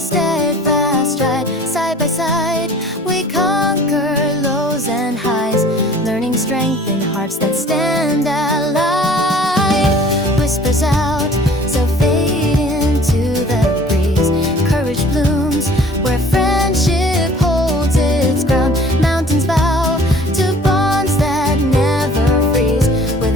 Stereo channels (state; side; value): normal; both; correlation 0.50